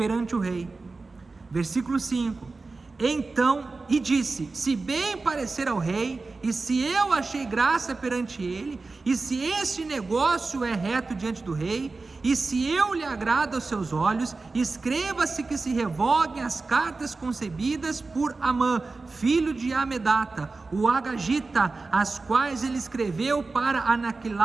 o rei. Versículo 5: então, e disse: se bem parecer ao rei, e se eu achei graça perante ele, e se este negócio é reto diante do rei, e se eu lhe agrado aos seus olhos, escreva-se que se revoguem as cartas concebidas por Amã, filho de Amedata, o Agagita, as quais ele escreveu para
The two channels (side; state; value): left; quieter; 3.8 dB